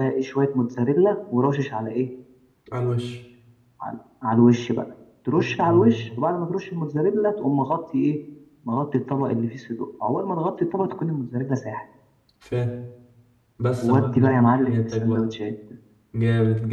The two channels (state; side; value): identical; both; correlation 1.00